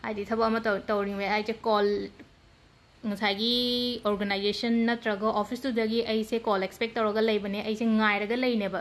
हाइदि थबक अमा तौरिंगे आइजे कॉल ngसागी ऑर्गेनाइजेशन नत्रगा ऑफिस तुदगी ऐसे कॉल एक्सपेक्ट तौरगा लैबने ऐसे ngairaga लैनेबा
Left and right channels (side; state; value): both; identical; correlation 1.00